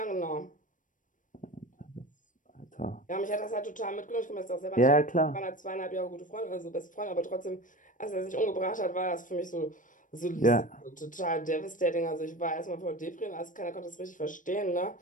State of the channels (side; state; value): right; late; 0.38 ms